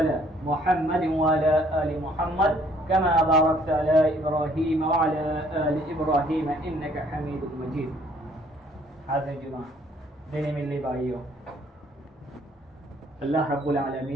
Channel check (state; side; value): normal; both; correlation 0.62